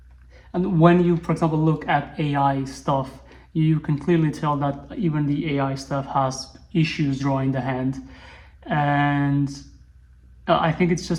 and when you, for example, look at AI stuff, you can clearly tell that even the AI stuff has issues drawing the hand. And I think it's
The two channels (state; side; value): identical; both; correlation 1.00